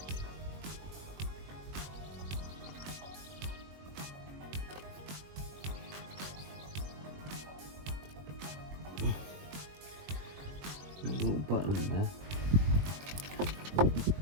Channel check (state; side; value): late; left; 21 ms